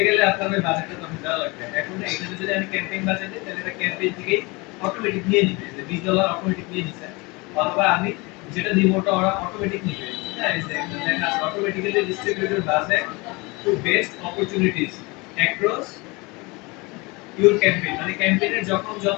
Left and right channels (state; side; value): quieter; right; 25.7 dB